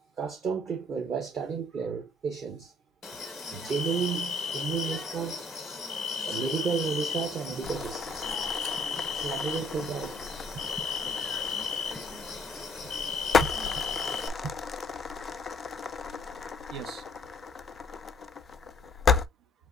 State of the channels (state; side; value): normal; both; correlation 0.62